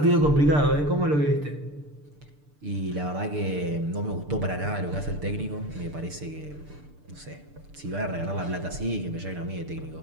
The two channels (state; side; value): late; left; 6.8 ms